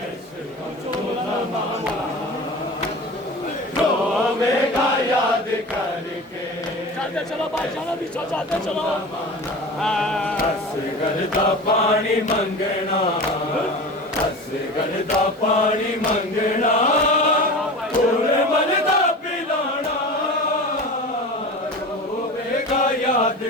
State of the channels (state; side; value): normal; both; correlation 0.33